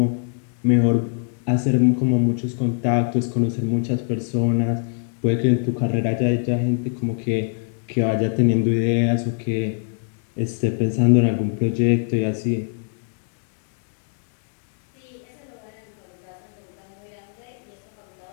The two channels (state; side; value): silent; right; 59 dB below the other